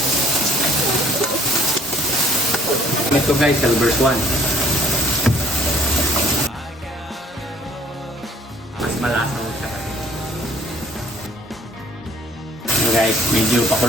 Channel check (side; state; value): both; normal; correlation 0.58